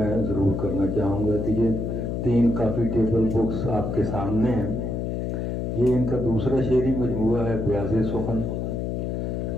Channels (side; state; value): left; noise; hum, 2 dB below the sound